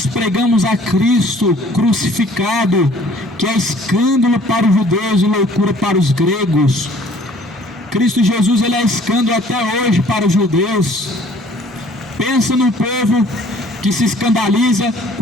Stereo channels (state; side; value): normal; both; correlation 0.55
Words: pregamos a Cristo crucificado, que é escândalo para os judeus e loucura para os gregos. Cristo Jesus, ele é escândalo até hoje para os judeus. Pensa no povo que se escandaliza